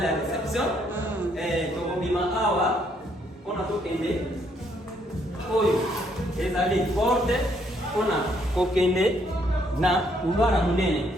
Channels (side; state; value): both; normal; correlation 0.70